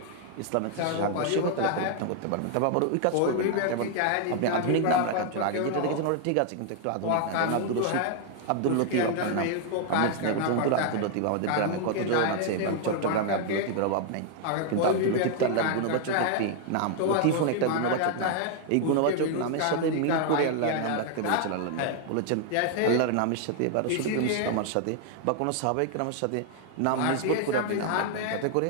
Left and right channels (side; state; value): both; different; correlation 0.00